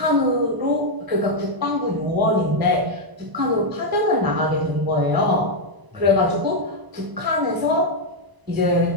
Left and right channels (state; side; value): late; left; 1.0 ms